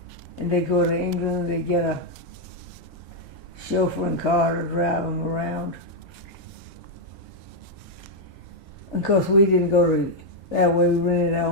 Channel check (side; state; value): both; normal; correlation -0.01